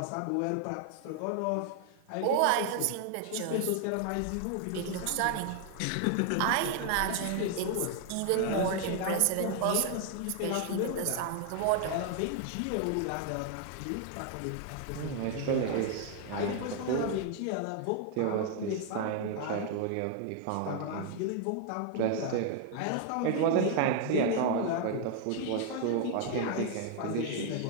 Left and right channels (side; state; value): both; different; correlation 0.00